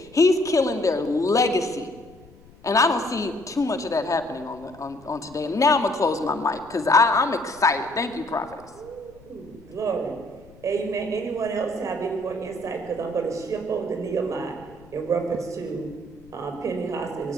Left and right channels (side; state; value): left; noise; rumble, 24 dB below the sound